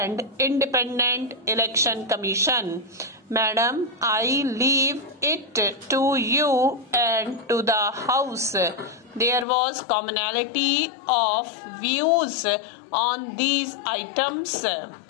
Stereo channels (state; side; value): drops out; right; at 9.5 s